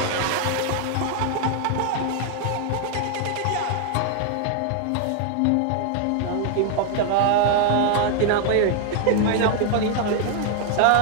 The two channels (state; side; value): different; both; correlation 0.00